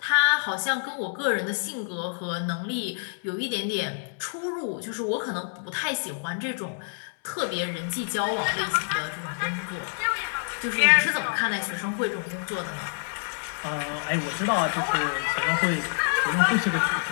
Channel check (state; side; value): silent; right; digital silence